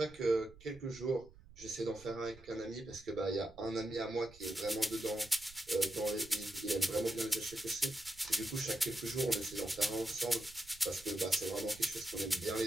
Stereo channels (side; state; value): right; noise; rumble, 21 dB below the sound